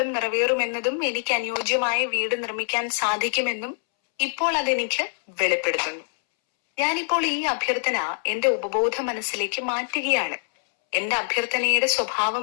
നിറവേറുമെന്നതും എനിക്ക് അനുയോജ്യമായ വീട് നിർമ്മിക്കാൻ സാധിക്കുമെന്നും ഇപ്പോൾ അതെനിക്ക് വെളിപ്പെടുത്തുന്നു. ഞാനിപ്പോൾ ഈ അഭ്യർത്ഥന എന്റെ ഉപബോധ മനസ്സിലേക്ക് മാറ്റുകയാണ്. എന്റെ അഭ്യർത്ഥനയുടെ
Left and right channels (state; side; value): silent; right; 62 dB below the other